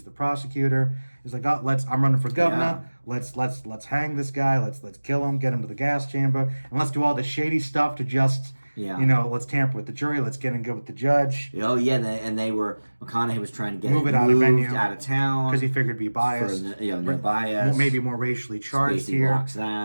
the prosecutor. He's like, I'm running for governor. Yeah. Let's hang this guy. Let's kill him. Get him to the gas chamber, and let's do all the shady stuff to just let's tamper with the jury. Let's get in good with the judge. Oh yeah, and McConaughey was trying to get it out of town because he figured it'd be biased. No bias. Maybe more racially charged Spacey here. Blocks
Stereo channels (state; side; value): inverted; both; correlation -1.00